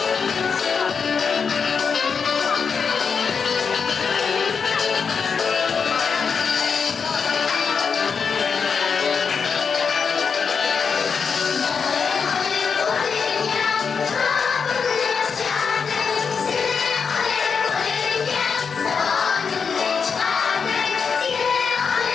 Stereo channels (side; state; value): right; quieter; 5.9 dB